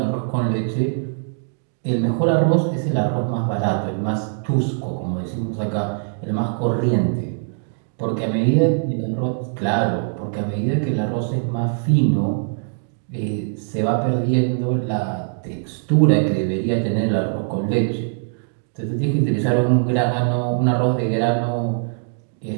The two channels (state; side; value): silent; left; digital silence